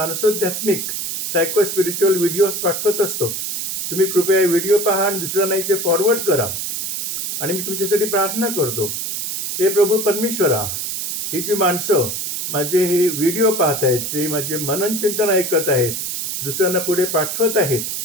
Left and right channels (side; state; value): right; noise; hiss, 3 dB below the sound